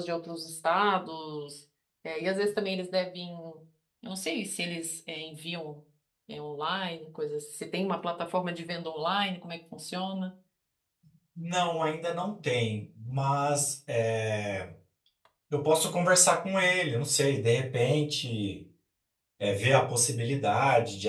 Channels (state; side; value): identical; both; correlation 1.00